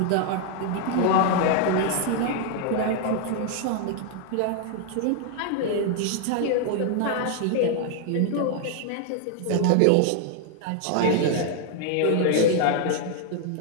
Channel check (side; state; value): both; different; correlation 0.00